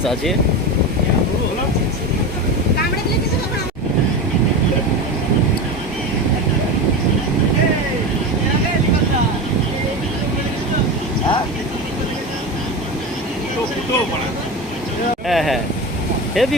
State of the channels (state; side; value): normal; both; correlation 0.24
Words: আছে। হ্যাঁ হ্যাঁ,